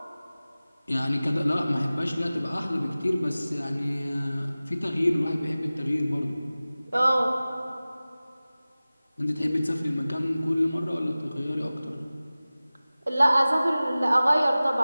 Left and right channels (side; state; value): both; inverted; correlation -0.97